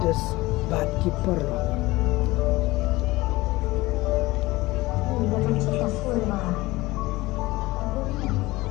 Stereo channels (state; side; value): quieter; right; 19.9 dB